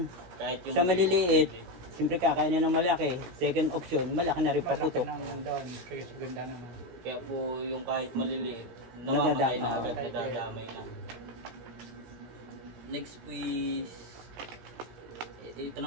Kahit yung sa maliliit, siyempre kakainin ng malaki, second option, malaki na rin Malaki paputok. naman doon, kaya ganda naman. Kaya po yung kahit maliliit, namamatay na agad, Nadadamay. nadadamay na. Next po is, ito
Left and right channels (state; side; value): late; left; 16 ms